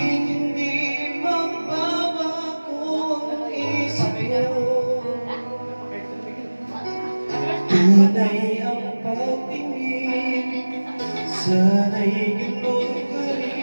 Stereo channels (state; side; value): inverted; both; correlation -1.00